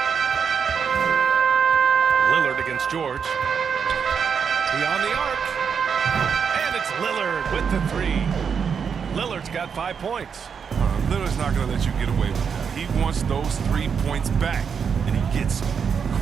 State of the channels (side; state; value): left; quieter; 6.6 dB